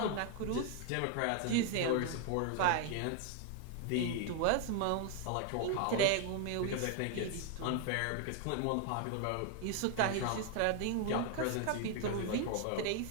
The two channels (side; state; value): both; different; correlation 0.00